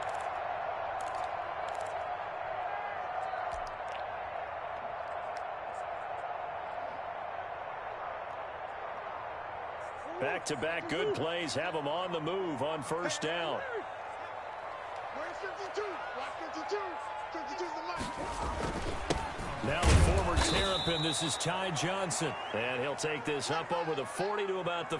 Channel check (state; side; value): identical; both; correlation 1.00